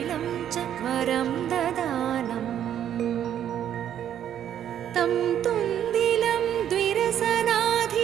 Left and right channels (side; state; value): left; quieter; 10.1 dB